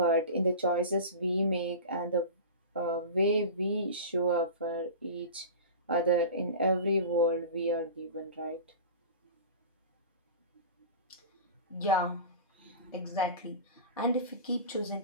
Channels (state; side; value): inverted; both; correlation -0.33